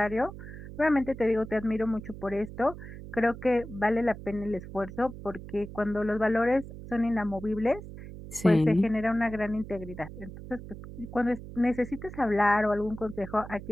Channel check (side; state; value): right; noise; hum, 13 dB below the sound